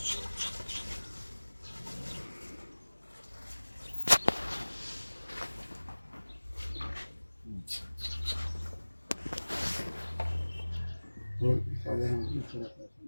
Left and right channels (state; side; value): inverted; both; correlation -1.00